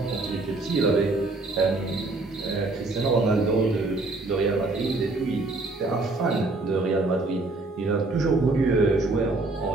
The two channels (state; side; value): quieter; left; 3.2 dB